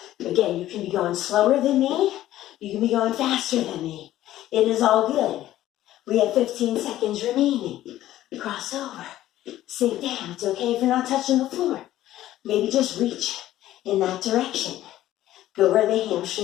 Again, you can be going slower than me. You can be going faster than me. It is all good. We have 15 seconds remaining. Cross over. Sink down. It's okay if you're not touching the floor. Maybe just reach in that direction. Go where the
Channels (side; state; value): right; quieter; 13.9 dB